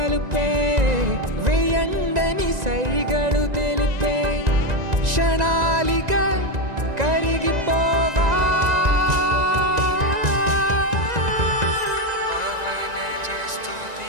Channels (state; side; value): late; left; 1.9 ms